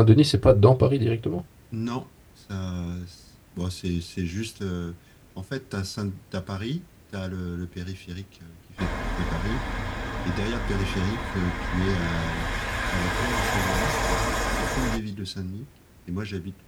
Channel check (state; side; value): identical; both; correlation 1.00